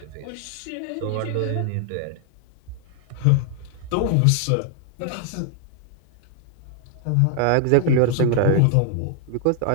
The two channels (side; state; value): both; different; correlation 0.00